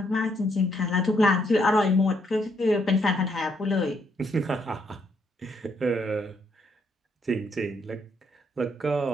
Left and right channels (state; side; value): normal; both; correlation 0.73